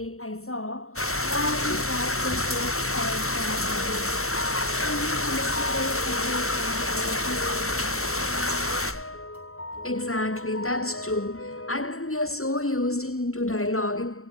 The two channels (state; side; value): late; right; 0.63 ms